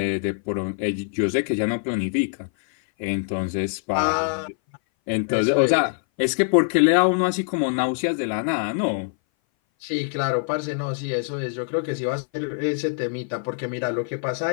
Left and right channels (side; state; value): right; silent; 59 dB below the other